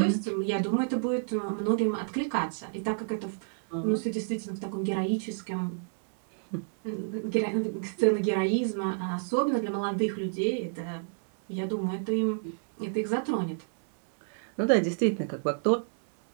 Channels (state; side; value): silent; left; digital silence